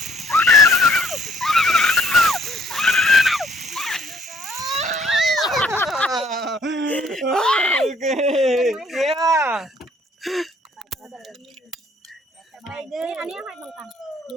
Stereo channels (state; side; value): normal; both; correlation 0.62